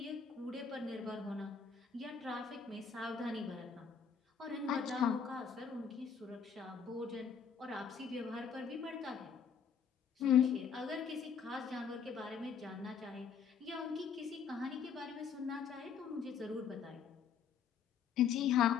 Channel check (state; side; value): quieter; right; 6.7 dB